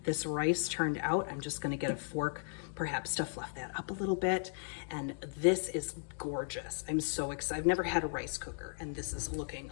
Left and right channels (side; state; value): right; silent; digital silence